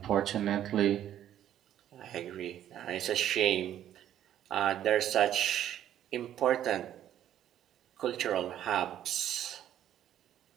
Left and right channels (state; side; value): quieter; left; 11.2 dB